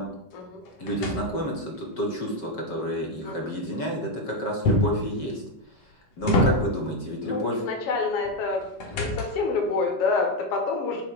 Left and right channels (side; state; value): right; late; 5.3 ms